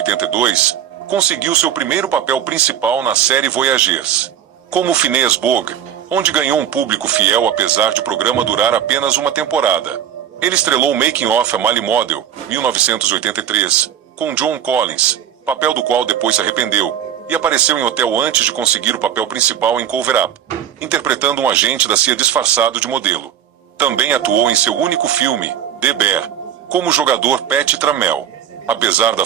conseguiu seu primeiro papel principal na série Voyagers, como Phineas Bogg, onde ganhou um público fiel apesar de o programa durar apenas uma temporada. Ele estrelou Making of a Male Model, 1983, com John Collins, papel do qual depois se arrependeu, e apareceu em hotel antes de conseguir o papel principal em Cover Up, interpretando um agente da CIA disfarçado de modelo. Também atuou em seu único filme, The Bear, como o jogador Pat Trammell. Apesar da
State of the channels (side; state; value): left; quieter; 9.8 dB